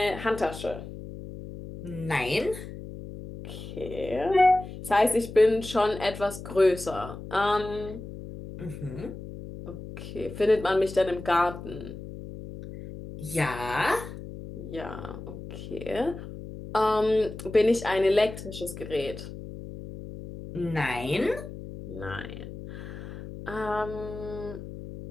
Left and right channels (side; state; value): left; noise; hum, 11 dB below the sound